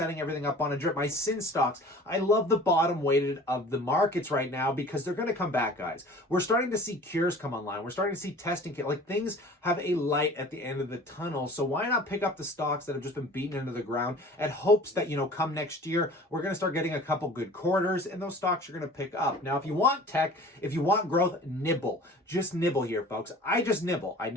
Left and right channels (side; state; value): both; normal; correlation 0.44